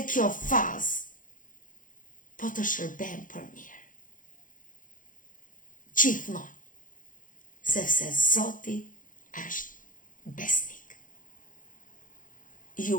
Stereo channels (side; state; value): right; late; 0.39 ms